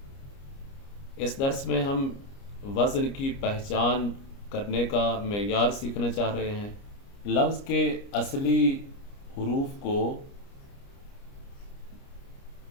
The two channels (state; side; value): late; right; 29 ms